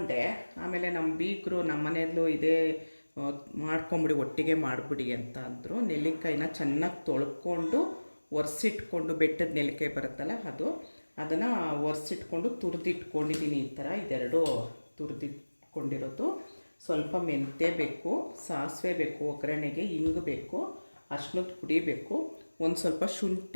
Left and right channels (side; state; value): both; inverted; correlation -1.00